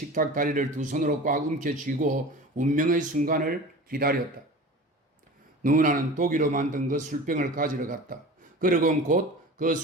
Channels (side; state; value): both; normal; correlation 0.36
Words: 다리를 두 손으로 꽉 움켜쥐고 운명의 순간을 기다렸다. 누나는 독일로 만든 그 술병을 가지러 갔다. 그러곤 곧 그